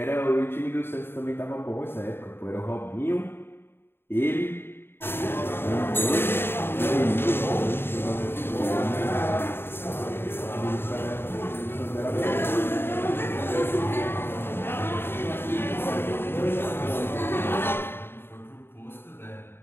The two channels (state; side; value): late; right; 0.11 ms